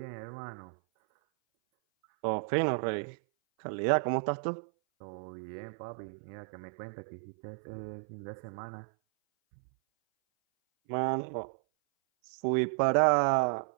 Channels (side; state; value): left; silent; 56 dB below the other